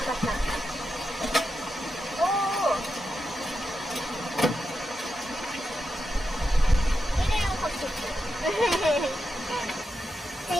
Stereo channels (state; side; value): normal; both; correlation 0.87